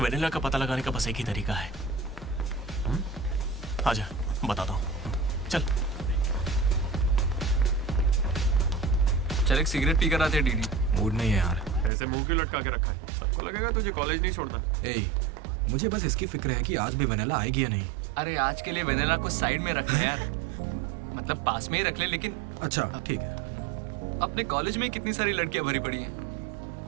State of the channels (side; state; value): left; drops out; at 11.9 s